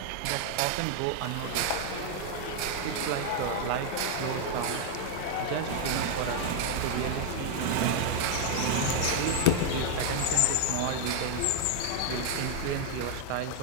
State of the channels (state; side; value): different; both; correlation 0.00